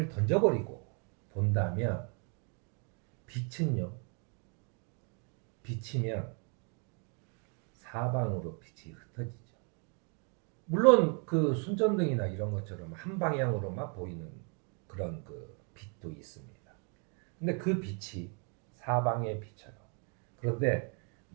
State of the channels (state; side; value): quieter; left; 38.4 dB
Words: 던져버리고 본다면 빛이면 사방으로 빛이 흩어지죠. 물론 그 손전등이나 이런 것처럼 한 방향으로만 보이는 그런 그 빛도 있습니다. 근데 그 빛이 사방에 비쳐요. 그런데